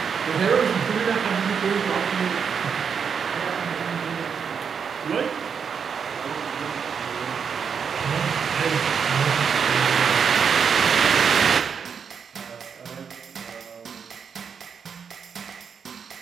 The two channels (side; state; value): left; quieter; 6.6 dB